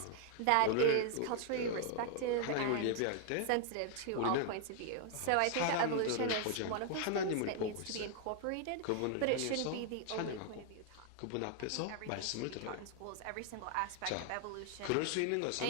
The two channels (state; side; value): different; both; correlation 0.00